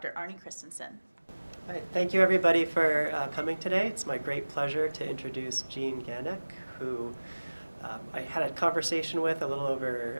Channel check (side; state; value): both; inverted; correlation -1.00